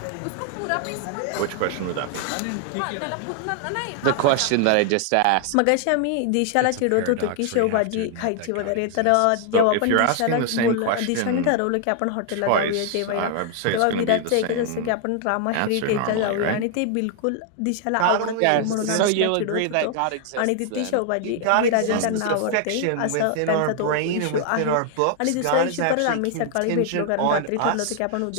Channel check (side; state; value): both; different; correlation 0.00